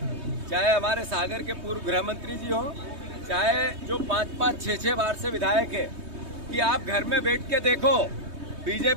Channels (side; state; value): left; late; 3.2 ms